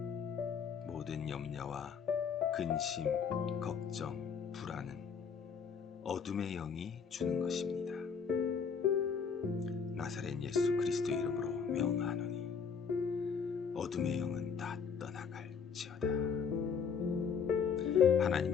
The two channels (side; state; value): right; quieter; 6.3 dB